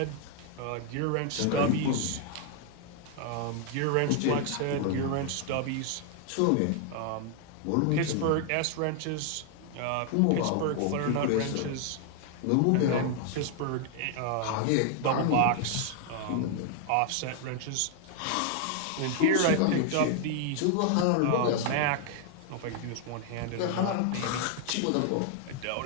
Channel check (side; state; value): both; different; correlation 0.00